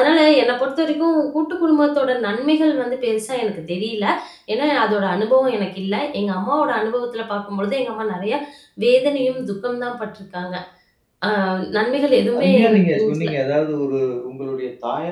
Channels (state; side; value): identical; both; correlation 1.00